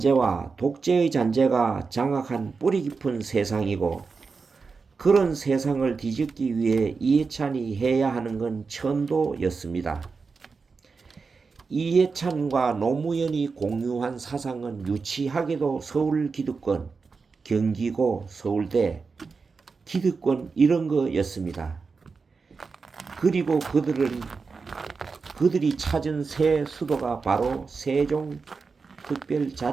독재의 잔재가 장악한 뿌리 깊은 세상이고, 그런 세상을 뒤집기 위해 이해찬이 해야 하는 건 천도였습니다. 이해찬과 노무현이 공유한 사상은 유치하게도 서울 기득권, 경기고 서울대, 기득권 이런 거였습니다. 그리고 그들이 찾은 새 수도가 바로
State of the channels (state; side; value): quieter; left; 4.7 dB